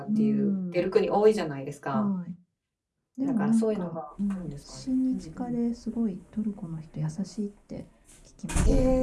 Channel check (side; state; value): both; identical; correlation 1.00